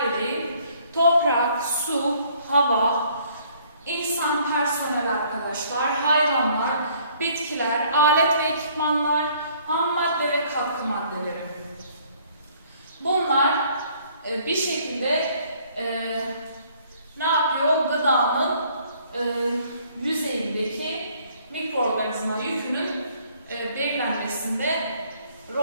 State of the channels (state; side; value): inverted; both; correlation -0.60